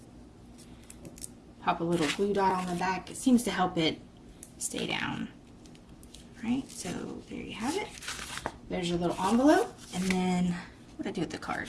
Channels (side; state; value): both; identical; correlation 1.00